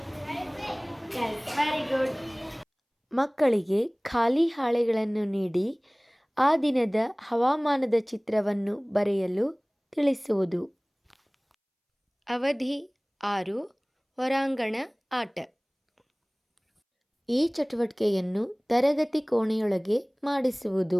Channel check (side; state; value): both; identical; correlation 1.00